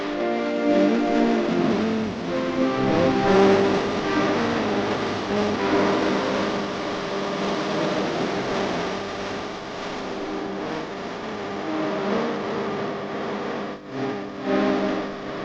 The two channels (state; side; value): identical; both; correlation 1.00